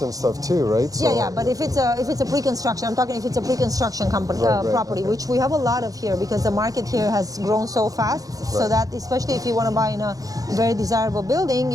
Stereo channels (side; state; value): left; late; 0.17 ms